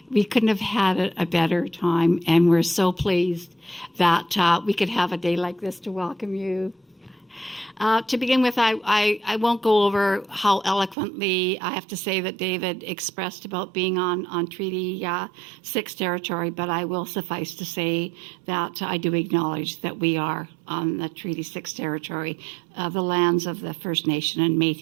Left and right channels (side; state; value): left; drops out; at 11.0 s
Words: We couldn't have had a better time, and we're so pleased that we could have a day like this to welcome you. To begin with, I won't go over how eloquently I have to say that David expressed about being on Treaty 6 territory, but I will suffice to say that I do acknowledge that we are on the Treaty 6 territory, the lands of the First Nation and